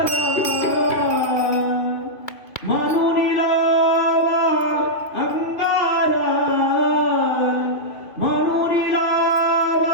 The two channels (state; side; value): late; right; 2.5 ms